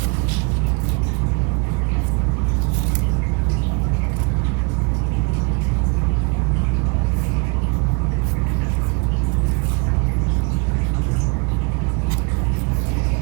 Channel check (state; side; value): quieter; left; 31.9 dB